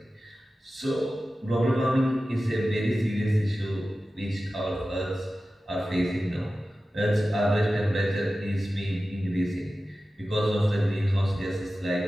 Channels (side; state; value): both; normal; correlation 0.94